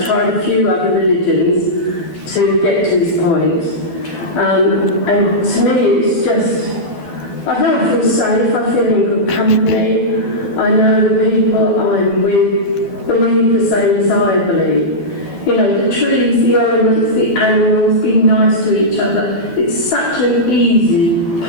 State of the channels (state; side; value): late; right; 12 ms